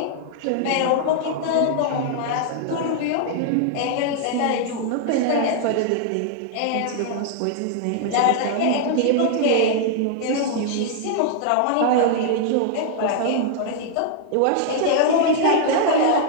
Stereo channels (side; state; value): both; different; correlation 0.00